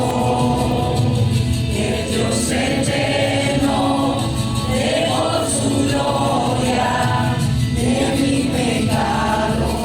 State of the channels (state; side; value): noise; left; rumble, 20 dB below the sound